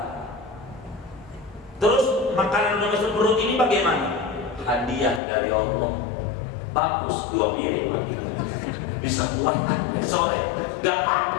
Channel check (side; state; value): right; drops out; at 5.2 s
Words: Terus makanan udah masuk perut ini bagaimana? Hadiah dari Allah. Bagus, 2 piring bisa kuat sore, gak